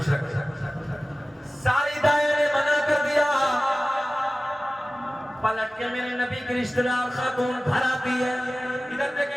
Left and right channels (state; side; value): normal; both; correlation 0.96